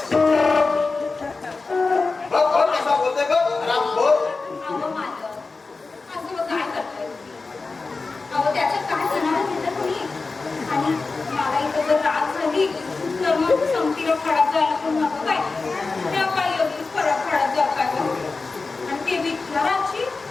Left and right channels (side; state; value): right; quieter; 4.0 dB